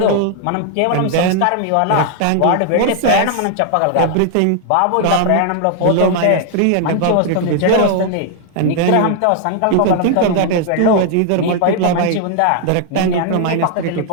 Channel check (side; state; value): both; different; correlation 0.00